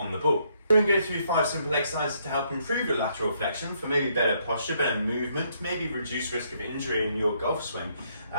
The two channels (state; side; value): inverted; both; correlation -0.72